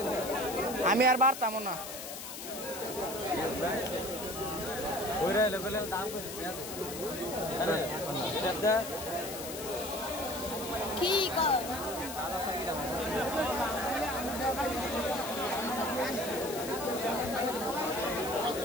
আমি আর বাড়তাম না। কি কর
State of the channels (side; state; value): left; noise; hiss, 9 dB below the sound